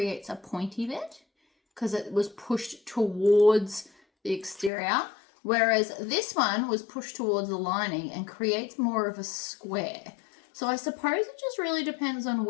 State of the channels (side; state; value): right; drops out; at 4.7 s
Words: a pointy bit, because it was pushed towards the exterior, whereas this one was pushed towards the lining and creates more of a square. So I suppose it just really depends on